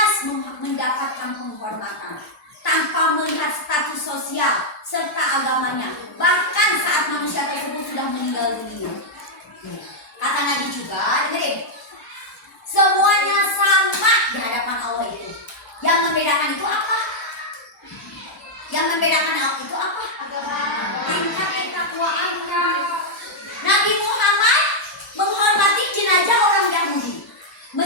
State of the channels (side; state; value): both; normal; correlation -0.04